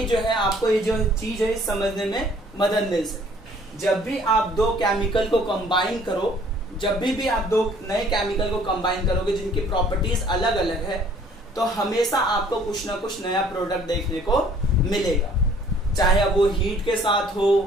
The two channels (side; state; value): both; normal; correlation 0.57